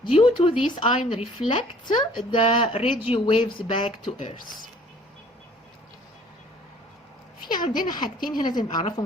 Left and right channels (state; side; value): normal; both; correlation 0.54